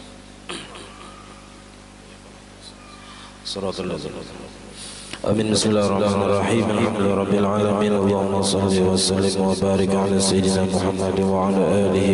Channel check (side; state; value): both; identical; correlation 1.00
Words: Suratul Amin. Bismillahirrahmanirrahim. Alhamdulillahi rabbil alamin. Allahumma shalli wa sallim wa barik ala sayyidina Muhammad wa ala